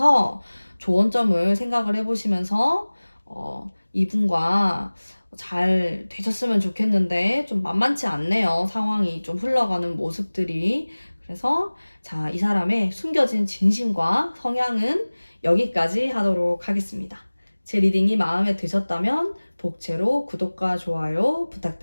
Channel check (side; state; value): both; inverted; correlation -1.00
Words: 좋은 점을 생각을 해보시면서 이분과 잘 되셨으면 좋겠는데 좀 만만치 않네요. 상황이 좀 흘러가는 모습들이. 그래서 자, 이 사람의 숨겨진 진심과 성향은 여기까지 하도록 하겠습니다. 제 리딩이 마음에 드셨다면 복채로 구독과 좋아요